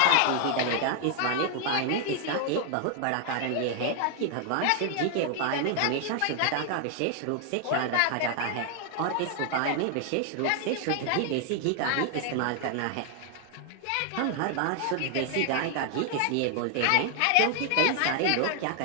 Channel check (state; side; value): different; both; correlation 0.00